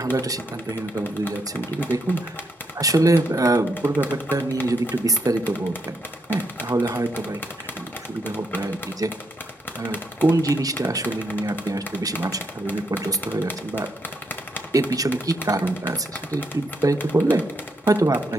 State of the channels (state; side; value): normal; both; correlation 0.78